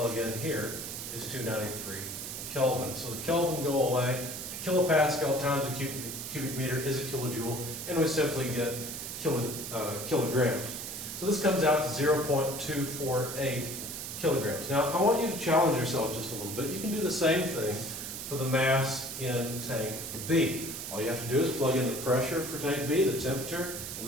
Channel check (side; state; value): right; noise; hiss, 7 dB below the sound